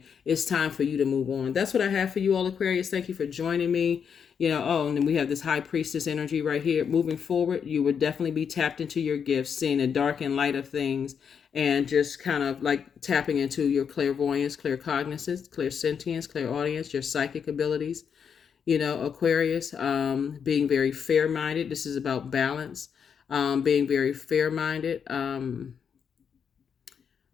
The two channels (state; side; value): quieter; right; 7.1 dB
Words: it's time for you to move on. That's what I have for you all, Aquarius. Thank you for joining me. And then we have this High Priestess energy right here. Moving forward, you would definitely be tapped into your gifts, seeing the dark and light of things, and just kind of like tapping into your clairvoyance, claircognizance, clairsentience, clairaudience, your psychic abilities. Aquarius, being very fair-minded. This is about balance, being very fair-minded,